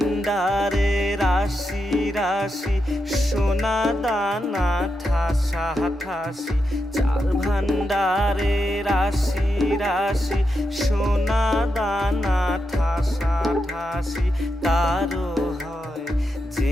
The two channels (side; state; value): both; normal; correlation 0.86